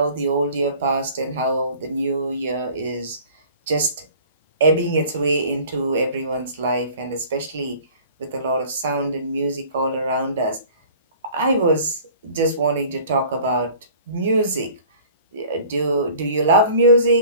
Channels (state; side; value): inverted; both; correlation -0.48